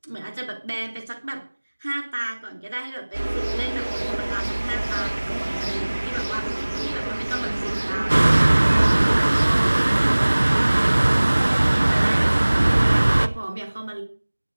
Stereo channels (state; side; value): inverted; both; correlation -1.00